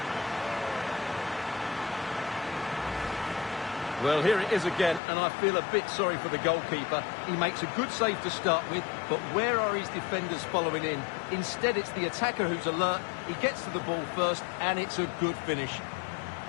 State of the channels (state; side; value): drops out; right; at 5.0 s